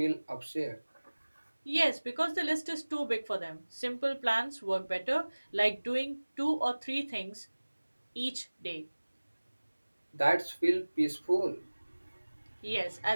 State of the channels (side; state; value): both; inverted; correlation -1.00